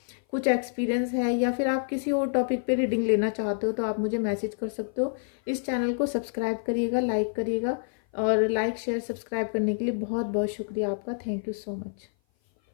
कुछ एक्सपीरियंस है, या फिर आप किसी और टॉपिक पे रीडिंग लेना चाहते हो, तो आप मुझे मैसेज कर सकते हो। इस चैनल को सब्सक्राइब करिएगा, लाइक करिएगा, और लाइक शेयर सब्सक्राइब करने के लिए बहुत बहुत शुक्रिया आपका। Thank you so much.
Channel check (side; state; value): right; silent; 56 dB below the other